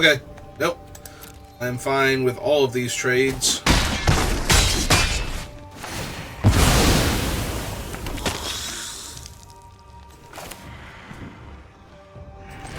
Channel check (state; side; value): identical; both; correlation 1.00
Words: Nope. I'm fine with all of these trades.